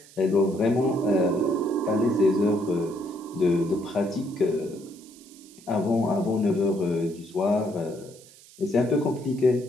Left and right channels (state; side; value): noise; right; hiss, 23 dB below the sound